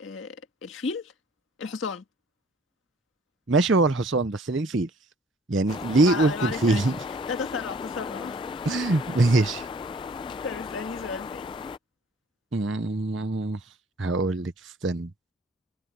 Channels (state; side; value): normal; both; correlation 0.55